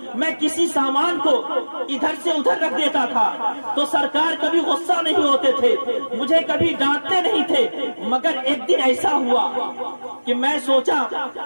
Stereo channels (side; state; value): both; inverted; correlation -1.00